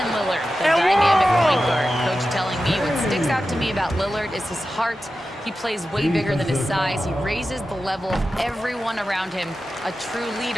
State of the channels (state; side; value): normal; both; correlation 0.92